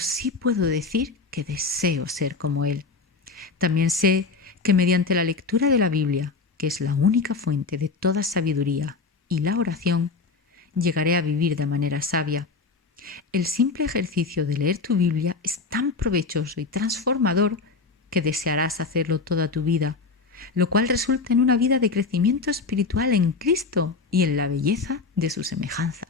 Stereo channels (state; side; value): quieter; right; 4.3 dB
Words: puedo decir que deseo ser como Él. También sé que mediante la lectura de la Biblia, que es la única fuente de toda sabiduría, y la oración, llegaré a vivir de manera sabia. El simple ejercicio de leer tu Biblia es tan provechoso y transformador que desearás hacerlo toda tu vida, lo cual resulta en una vida de crecimiento espiritual en Cristo y en la belleza de su semejanza.